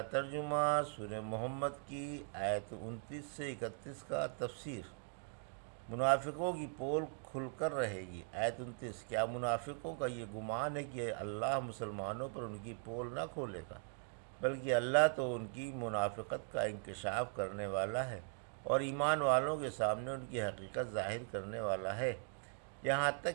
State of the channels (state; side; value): silent; left; 51 dB below the other